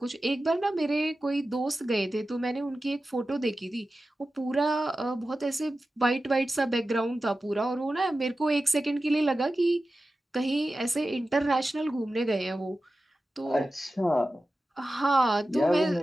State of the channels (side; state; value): both; normal; correlation 0.94